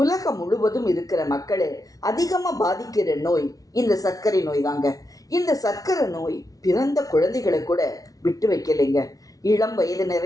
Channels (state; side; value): late; right; 0.18 ms